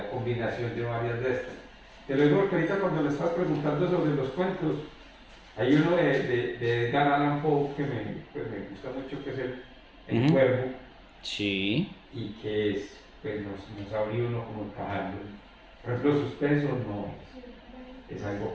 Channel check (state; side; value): identical; both; correlation 1.00